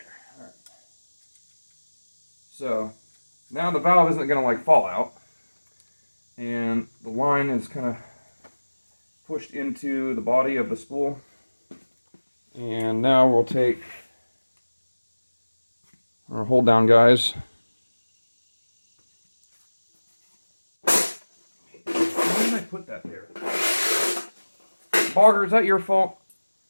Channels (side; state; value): both; inverted; correlation -1.00